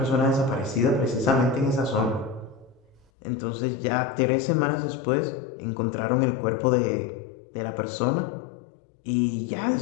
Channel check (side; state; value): right; drops out; at 3.1 s